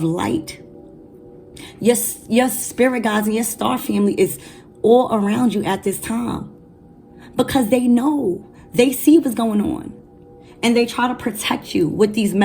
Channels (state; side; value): identical; both; correlation 1.00